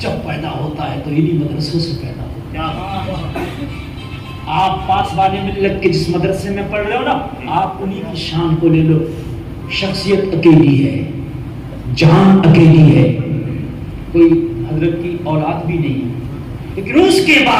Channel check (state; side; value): identical; both; correlation 1.00